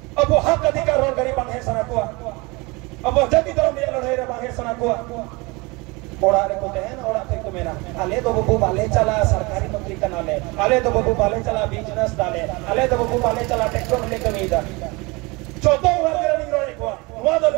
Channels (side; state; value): left; quieter; 25.7 dB